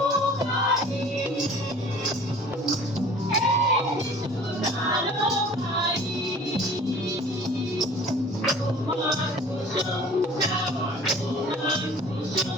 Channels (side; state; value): both; normal; correlation 0.47